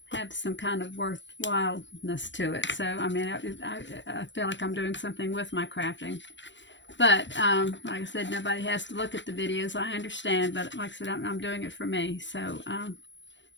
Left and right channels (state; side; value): late; right; 0.53 ms